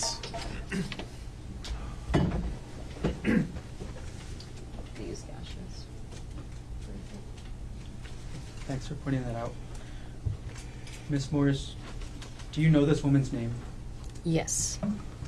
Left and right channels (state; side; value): identical; both; correlation 1.00